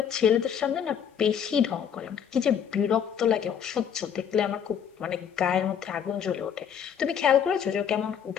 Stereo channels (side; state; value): right; quieter; 8.2 dB